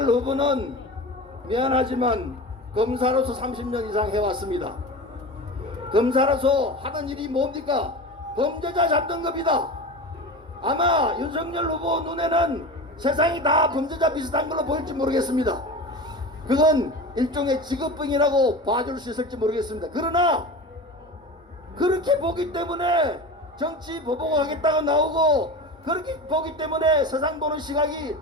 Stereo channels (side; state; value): both; normal; correlation 0.30